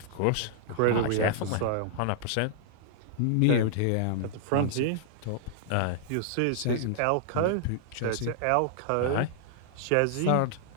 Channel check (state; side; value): different; both; correlation -0.01